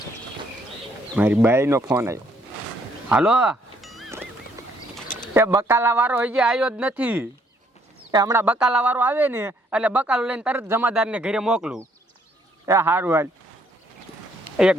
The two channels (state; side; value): normal; both; correlation 0.67